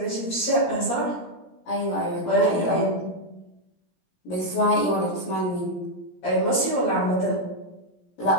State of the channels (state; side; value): late; right; 17 ms